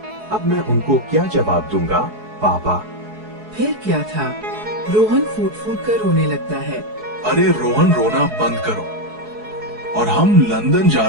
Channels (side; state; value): left; late; 4.7 ms